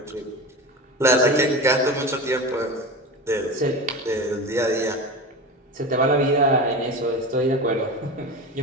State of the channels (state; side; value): normal; both; correlation 0.27